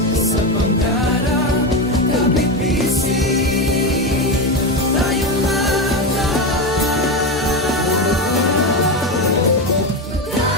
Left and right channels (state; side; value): normal; both; correlation 0.15